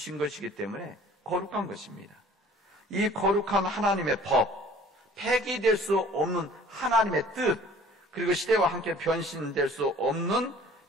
거룩한 것입니다. 이 거룩한 하나님의 법, 폐기될 수 없는 하나님의 뜻, 그리고 시대와 함께 변질될 수 없는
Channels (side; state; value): both; normal; correlation 0.51